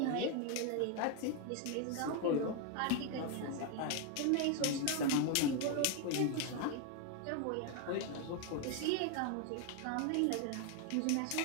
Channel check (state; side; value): different; both; correlation 0.01